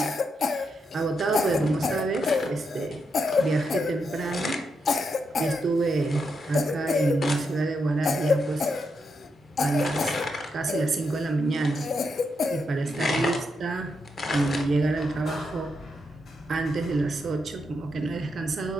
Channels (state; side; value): normal; both; correlation 0.82